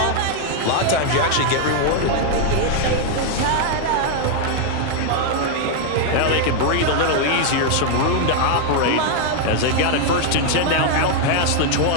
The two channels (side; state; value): both; different; correlation 0.00